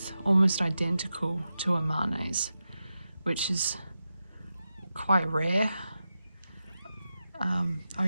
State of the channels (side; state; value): both; inverted; correlation -0.91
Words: almost identical to Amane's, which is quite rare.